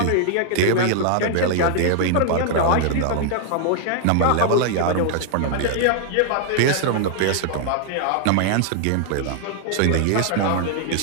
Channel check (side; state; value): both; different; correlation 0.00